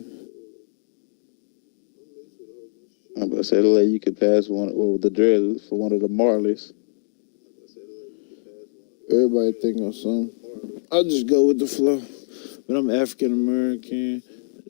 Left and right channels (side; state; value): right; silent; digital silence